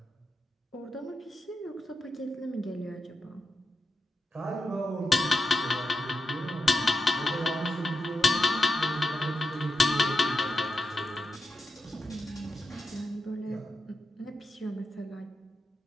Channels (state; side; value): normal; both; correlation 0.86